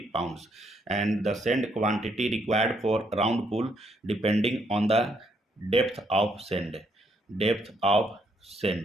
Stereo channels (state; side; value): normal; both; correlation 0.72